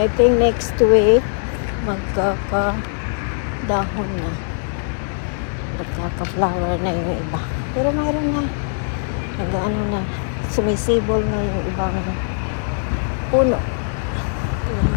I think next week magkaka-dahon na. Magkaka-flower na yung iba. Pero mayroon na. Nag-ano na. Sumisibol na yung ibang puno.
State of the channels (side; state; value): right; silent; digital silence